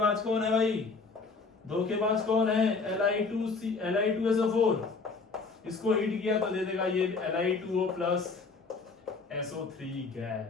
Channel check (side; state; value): right; quieter; 4.3 dB